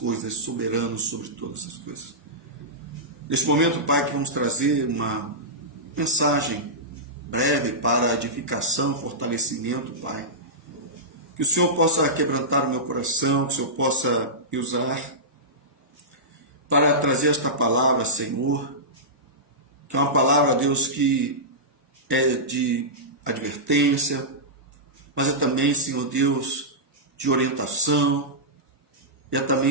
soberano sobre todas as coisas. Neste momento, Pai, que vamos trazer uma mensagem breve para edificação, fortalecimento, Pai. Que o Senhor possa quebrantar o meu coração, que o Senhor possa me usar para trazer esta palavra, Senhor, que é uma palavra, Deus, que é de advertência, mas é também, Senhor Deus, de orientação, e é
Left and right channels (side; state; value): both; normal; correlation -0.14